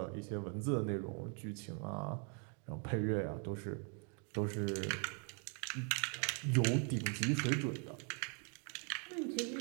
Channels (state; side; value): quieter; left; 39.0 dB